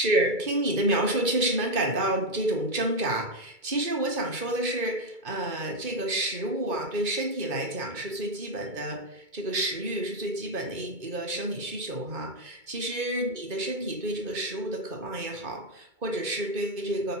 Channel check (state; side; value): late; left; 2.2 ms